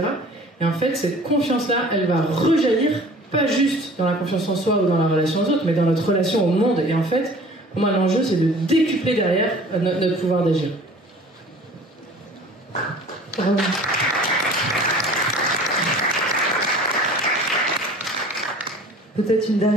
Et en fait cette confiance-là, elle va rejaillir pas juste dans la confiance en soi ou dans la relation aux autres, mais dans notre relation au monde. Et en fait, pour moi l'enjeu c'est de décupler derrière notre pouvoir d'agir. Peut-être une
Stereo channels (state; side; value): normal; both; correlation 0.46